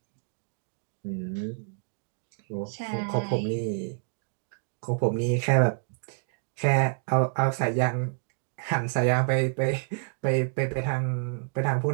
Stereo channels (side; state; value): left; silent; 59 dB below the other